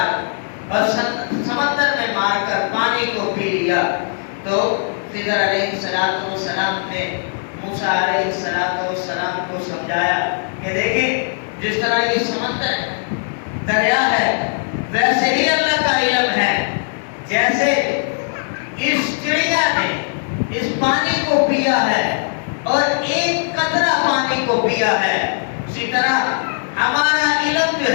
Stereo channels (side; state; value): right; silent; 65 dB below the other